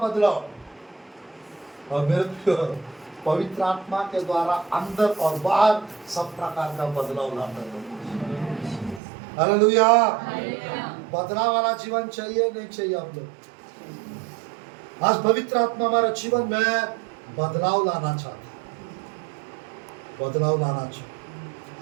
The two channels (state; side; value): drops out; left; at 9.0 s